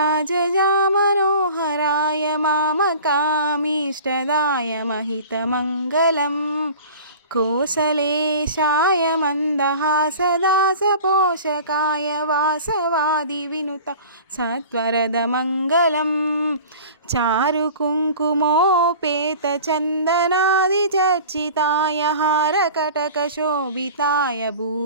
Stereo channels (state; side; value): inverted; both; correlation -0.41